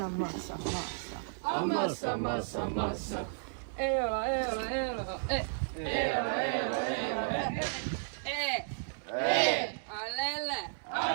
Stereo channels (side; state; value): left; silent; digital silence